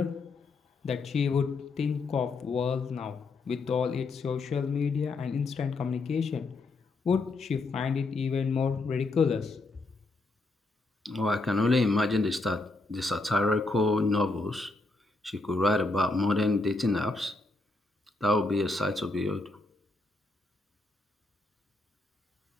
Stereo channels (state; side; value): quieter; right; 3.3 dB